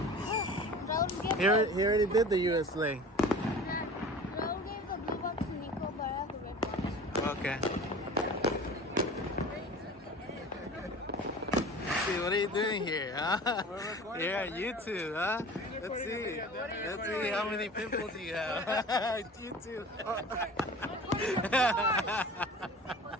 He already did the US lane. Raul gave the blue box to Nico, but I have the red box. Okay. Let's see, what are you doing here, huh? You're on YouTube, huh? Let's see. Let's see how many pimples you have. YouTube.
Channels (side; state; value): both; normal; correlation 0.40